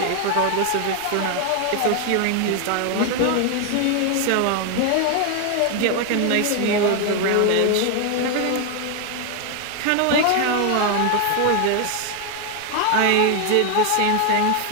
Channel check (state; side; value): different; both; correlation 0.01